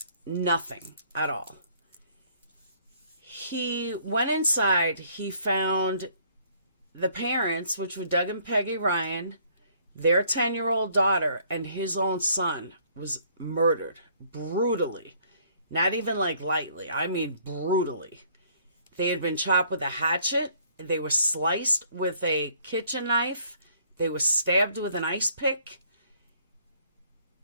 nothing at all. He went inside, he found the parents, which were Doug and Peggy Ryen, their 10-year-old daughter, and his own son was murdered brutally. Not even like lightly, I mean brutally. They had been chopped with a hatchet. They were sliced with a kitchen knife. They were stabbed with an ice pick.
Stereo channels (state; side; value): inverted; both; correlation -0.62